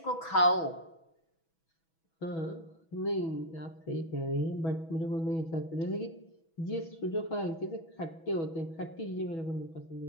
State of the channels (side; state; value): right; late; 6.1 ms